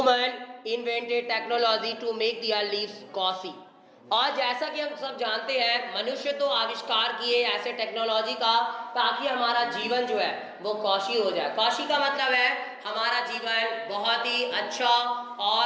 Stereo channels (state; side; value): identical; both; correlation 1.00